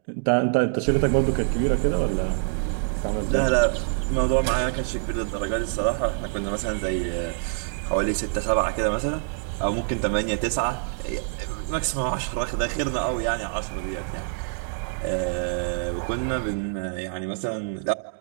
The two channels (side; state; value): left; silent; digital silence